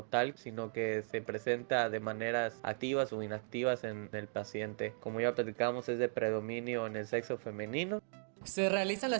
tal, sino que se presenta de maneras activas o inactivas en el paciente. Como ya platicamos, es de predominio en el sexo femenino. Se realizan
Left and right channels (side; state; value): left; silent; digital silence